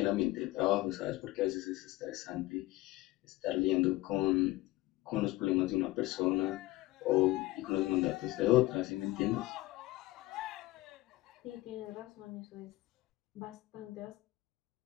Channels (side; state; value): right; quieter; 18.6 dB